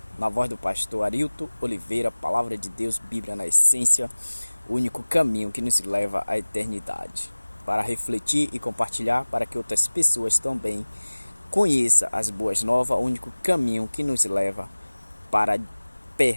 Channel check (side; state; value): both; inverted; correlation -1.00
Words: na voz do pastor Arilton Oliveira, Palavra de Deus, Bíblia na essência, o único caminho que nos leva à eternidade. Para refletir e compartilhar, para que outras pessoas também conheçam as boas novas, o único caminho que nos leva para